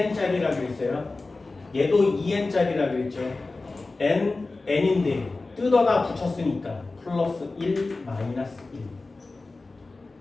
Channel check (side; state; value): right; quieter; 3.4 dB